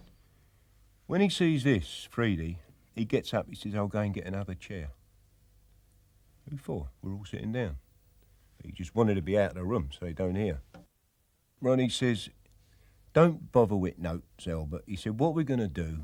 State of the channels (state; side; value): identical; both; correlation 1.00